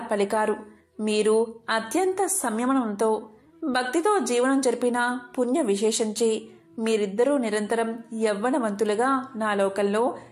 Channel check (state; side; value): identical; both; correlation 1.00